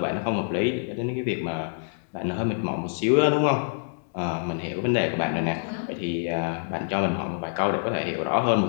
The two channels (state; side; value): silent; right; 61 dB below the other